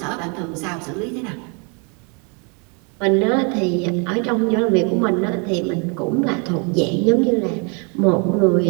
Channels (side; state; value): left; quieter; 35.0 dB